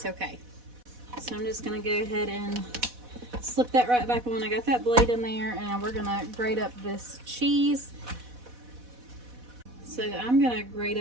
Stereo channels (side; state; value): left; late; 4.1 ms